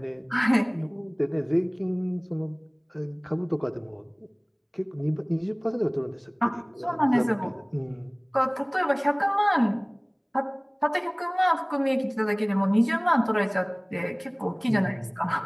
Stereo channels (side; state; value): both; identical; correlation 1.00